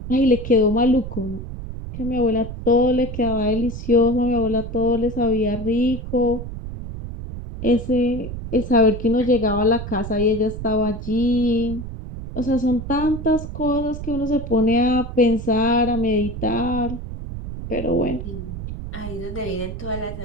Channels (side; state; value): right; noise; rumble, 8 dB below the sound